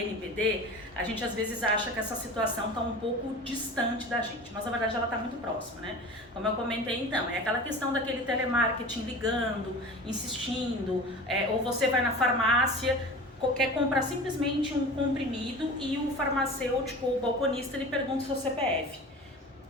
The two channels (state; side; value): normal; both; correlation 0.36